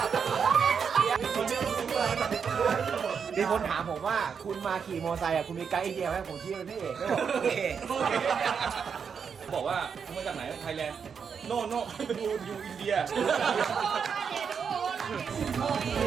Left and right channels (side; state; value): left; quieter; 6.5 dB